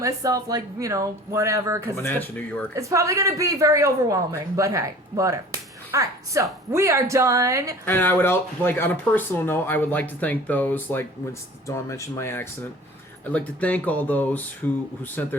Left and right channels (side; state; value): both; normal; correlation 0.45